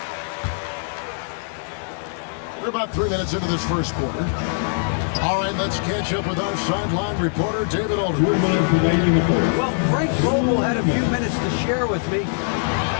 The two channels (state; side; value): silent; right; digital silence